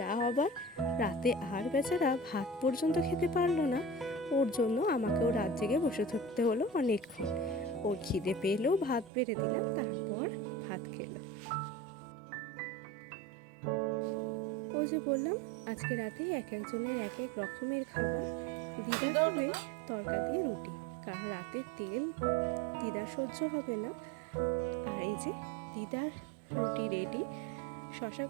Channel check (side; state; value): left; drops out; at 9.1 s